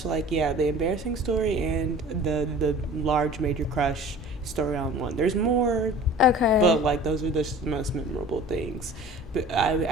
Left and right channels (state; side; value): normal; both; correlation 0.43